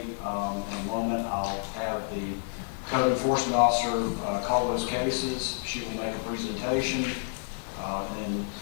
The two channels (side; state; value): right; silent; digital silence